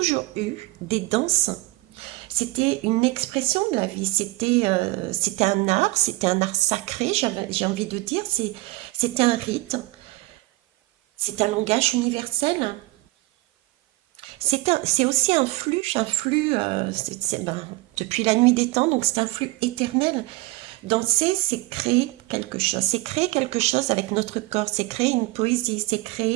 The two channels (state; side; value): quieter; left; 21.2 dB